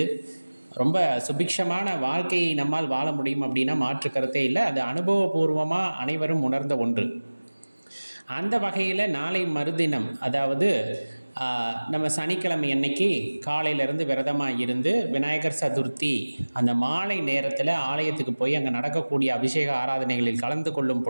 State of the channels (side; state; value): both; inverted; correlation -1.00